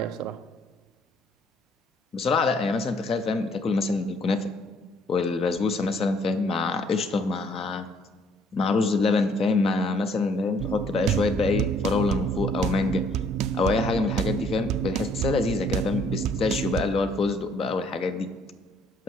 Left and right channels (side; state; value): both; normal; correlation 0.63